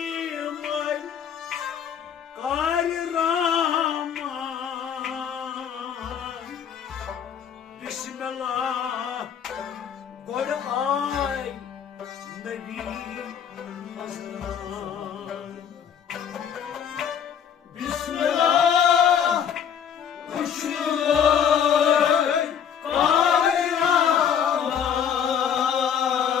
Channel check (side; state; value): right; quieter; 8.2 dB